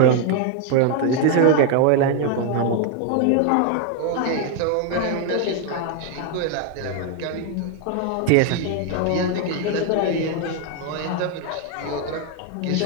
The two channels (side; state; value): both; different; correlation 0.01